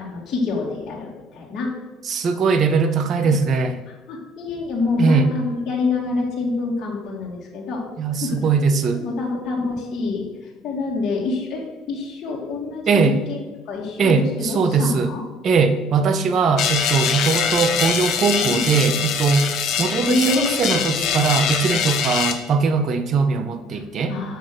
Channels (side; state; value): both; normal; correlation 0.58